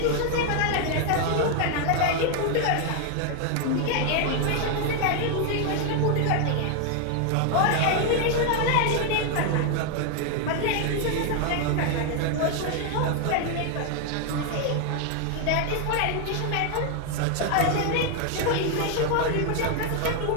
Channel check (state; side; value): different; both; correlation 0.00